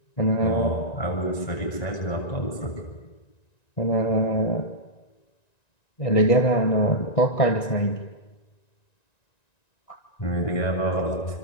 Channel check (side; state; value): right; late; 1.9 ms